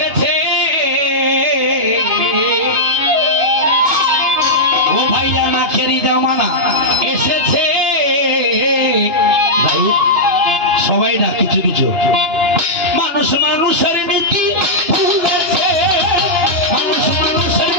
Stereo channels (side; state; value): left; late; 2.9 ms